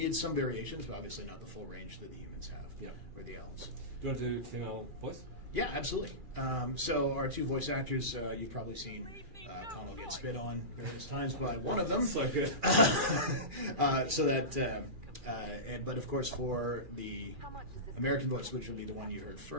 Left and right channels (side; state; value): left; late; 2.4 ms